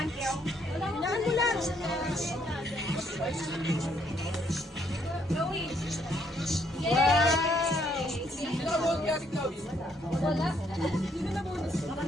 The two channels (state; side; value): normal; both; correlation 0.70